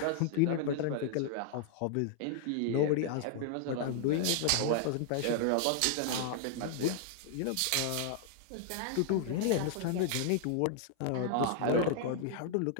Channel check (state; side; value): different; both; correlation 0.00